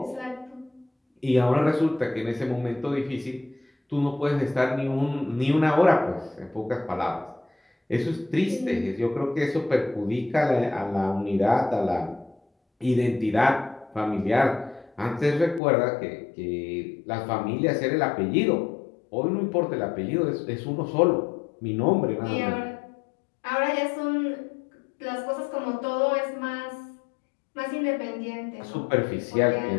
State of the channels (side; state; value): right; drops out; at 15.6 s